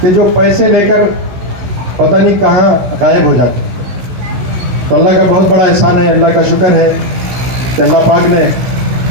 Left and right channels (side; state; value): left; late; 16 ms